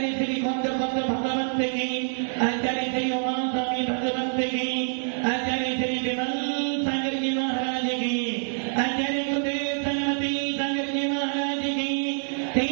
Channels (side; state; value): left; silent; digital silence